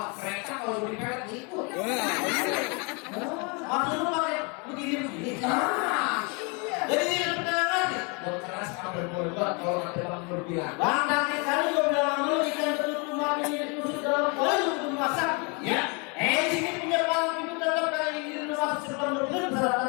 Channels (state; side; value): quieter; right; 32.4 dB